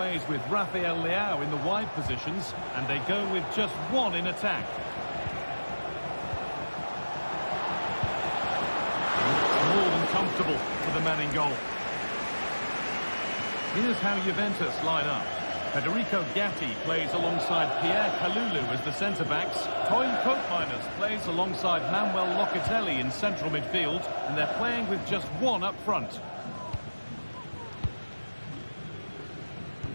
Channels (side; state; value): both; inverted; correlation -1.00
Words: with Rafael Leao in the wide positions, and they go with just one in attack. More than comfortable for the man in goal. Here's how Juventus line up. Federico Gatti plays alongside Pierre Kalulu as the centre-backs. Toyn Koopmeiners plays alongside Manuel Locatelli in central midfield, and they're playing with just one up front.